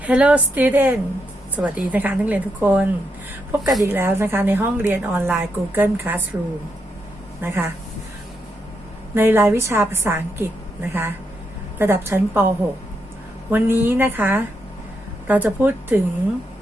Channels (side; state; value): both; normal; correlation 0.81